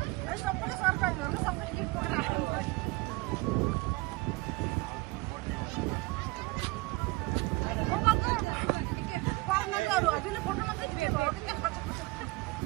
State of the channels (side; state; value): left; quieter; 23.3 dB